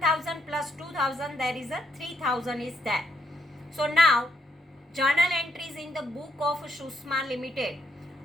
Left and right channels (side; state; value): both; normal; correlation 0.77